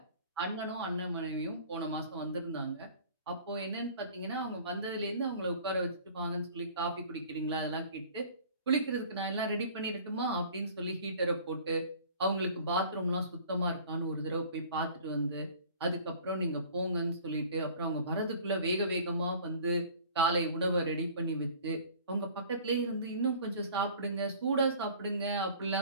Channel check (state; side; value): inverted; both; correlation -0.47